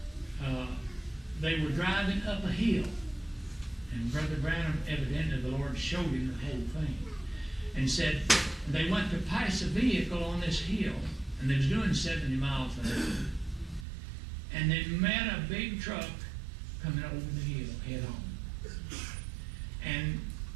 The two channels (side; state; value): left; drops out; at 13.9 s